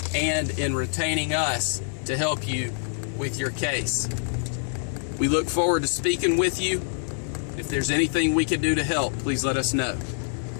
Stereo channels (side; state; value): right; silent; digital silence